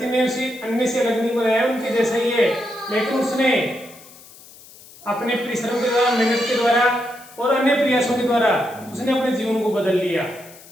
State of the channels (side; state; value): left; noise; hiss, 21 dB below the sound